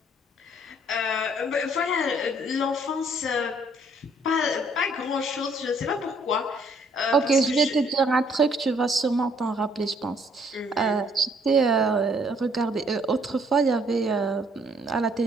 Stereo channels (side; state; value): both; normal; correlation 0.64